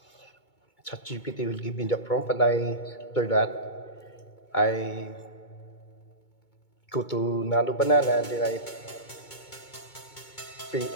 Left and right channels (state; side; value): late; right; 2.2 ms